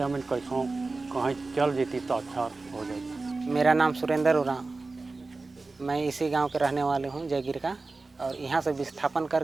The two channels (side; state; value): left; quieter; 3.6 dB